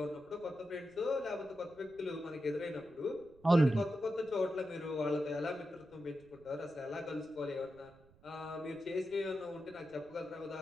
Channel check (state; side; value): noise; right; rumble, 26 dB below the sound